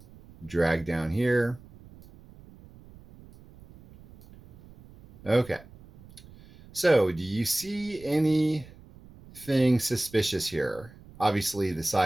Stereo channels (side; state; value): right; noise; rumble, 22 dB below the sound